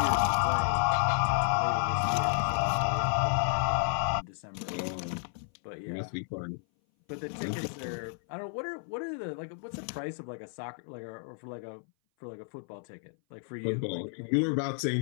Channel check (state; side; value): silent; right; 57 dB below the other